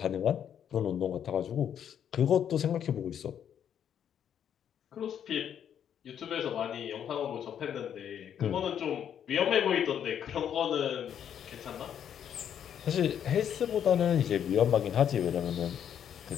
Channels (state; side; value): quieter; right; 9.1 dB